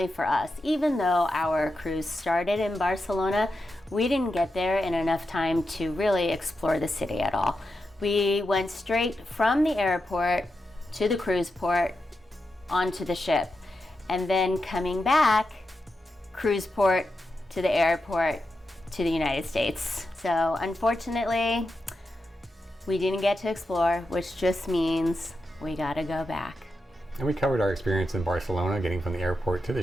for us, even though our cruise started in Barcelona, we didn't get there in enough time to really explore the city at all. We went straight from the airport to the cruise port onto the ship, and then coming back, cruise port to the airport to the United States. So unfortunately, we didn't get to explore, which just means we gotta go back. And we covered our experience in Barcelona, getting from the airport to the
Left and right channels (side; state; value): both; normal; correlation 0.88